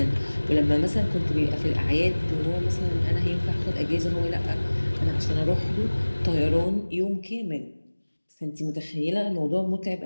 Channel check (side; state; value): both; inverted; correlation -1.00